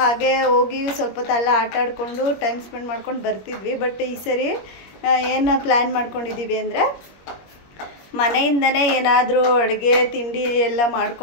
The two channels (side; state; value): right; late; 21 ms